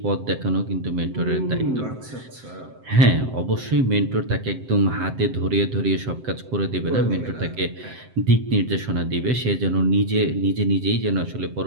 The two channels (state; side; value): late; left; 7.7 ms